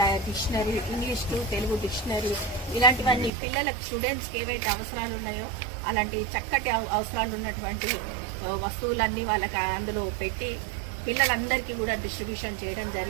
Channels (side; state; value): left; drops out; at 3.3 s